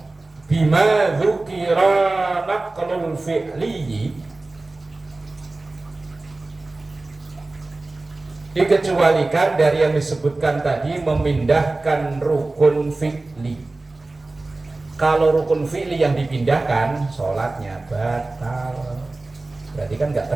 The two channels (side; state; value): left; quieter; 3.2 dB